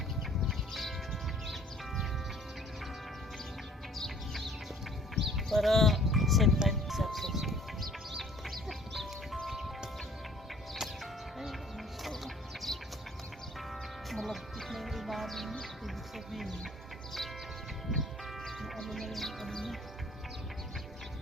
Para same time success. Malagkit na yung ilalim niya. Ibig sabihin yung ano na yung ano niya.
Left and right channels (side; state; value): both; normal; correlation 0.55